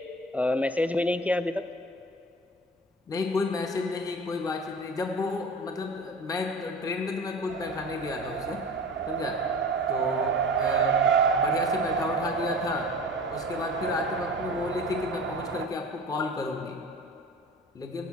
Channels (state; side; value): normal; both; correlation 0.38